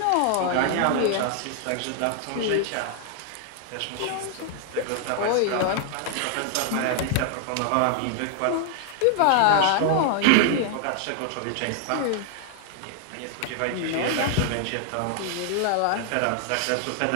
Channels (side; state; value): both; different; correlation 0.00